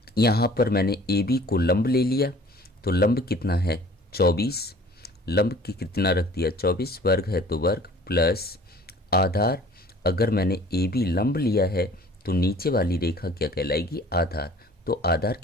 यहाँ पर मैंने AB को लंब ले लिया, तो लंब कितना है 24, लंब की कितना रख दिया 24, वर्ग है तो वर्ग प्लस आधार। अगर मैंने AB लंब लिया है तो नीचे वाली रेखा क्या कहलाएगी आधार, तो आधार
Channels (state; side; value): normal; both; correlation 0.49